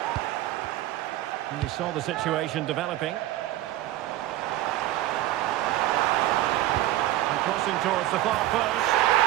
And he saw the situation developing. Crossing towards the far post.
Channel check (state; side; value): quieter; left; 15.1 dB